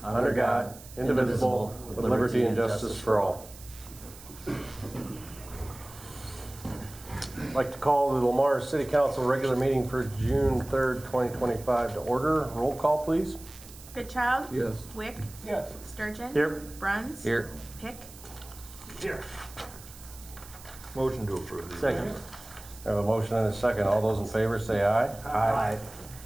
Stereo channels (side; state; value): right; noise; hiss, 18 dB below the sound